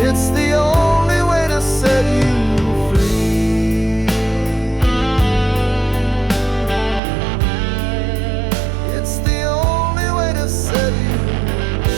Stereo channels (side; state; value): left; drops out; at 7.0 s